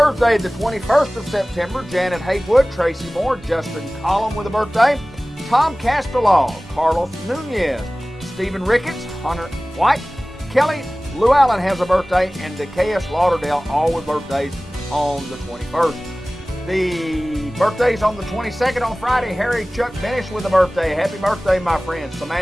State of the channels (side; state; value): both; normal; correlation 0.98